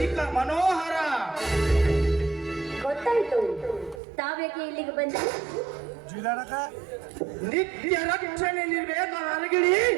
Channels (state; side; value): drops out; left; at 4.0 s